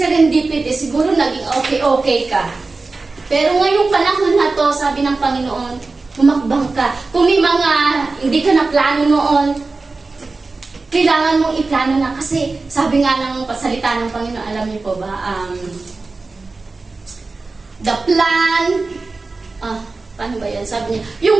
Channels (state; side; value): quieter; left; 3.7 dB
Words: siguro naging okay ka. Pero ngayong panahon na to, sabi ng Panginoon, humakbang ka. Kung may mga hindi ka na plano noon, kailangan mong iplano na. Kasi sabi nga ng pasalita ng Panginoon, alam niyo po ba, the plan, paano ba yan? Sabi niya,